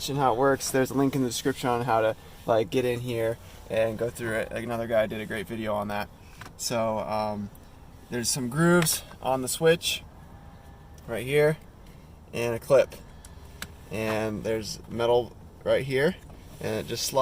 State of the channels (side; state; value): both; identical; correlation 1.00